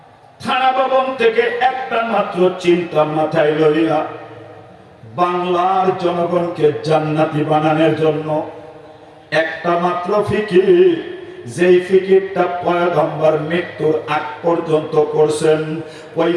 থানা ভবন থেকে একটা মাত্র চিন্তা মাথায় লইয়া বাংলার জনগণকে জান্নাতি বানানোর জন্য একটা মাত্র ফিকির, যেই ফিকিরটা পয়গম্বর মৃত্যুর আগ পর্যন্ত করছেন, ওই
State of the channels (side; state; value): both; identical; correlation 1.00